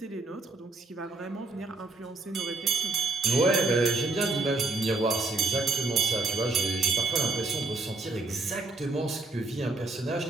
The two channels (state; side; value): quieter; left; 3.4 dB